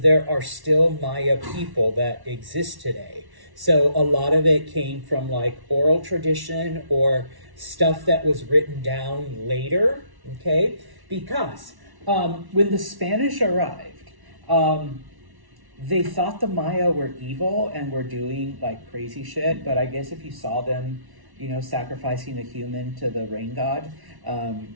there are still Maya people that exist today. So a lot of it came from oral tradition or stuff that was written down later, okay? Because when the Spanish arrived, they thought the Maya were evil and were doing crazy shit, but I guess if you saw them, sacrificing a human to the rain god,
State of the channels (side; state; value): left; late; 1.1 ms